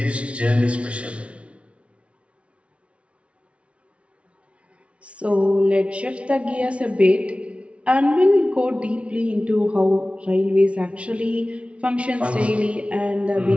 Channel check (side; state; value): left; late; 0.061 ms